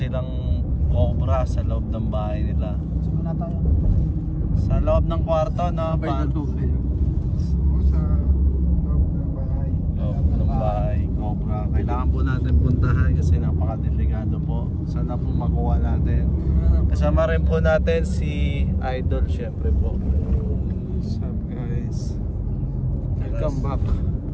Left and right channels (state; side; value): identical; both; correlation 1.00